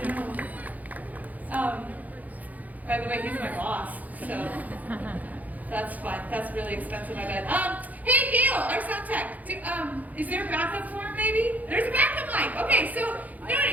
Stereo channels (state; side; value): late; left; 0.079 ms